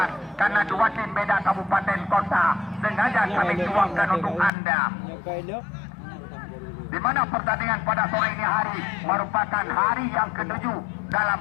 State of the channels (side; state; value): right; drops out; at 4.5 s